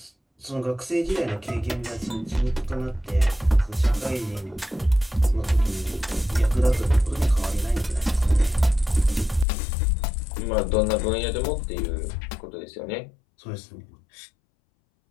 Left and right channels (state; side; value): drops out; right; at 9.5 s